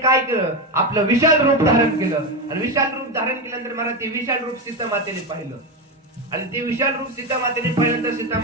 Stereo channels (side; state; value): both; normal; correlation 0.14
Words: काय केलं, आपलं विशाल रूप धारण केलं. आणि विशाल रूप धारण केल्यानंतर महाराज ते विशाल रूप सीता मातेने पाहिलं. आणि ते विशाल रूप सीता मातेने पाहिल्यानंतर सीता